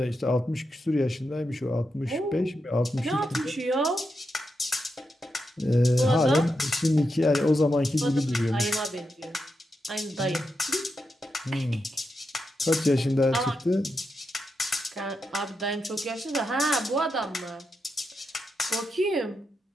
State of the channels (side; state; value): both; normal; correlation 0.86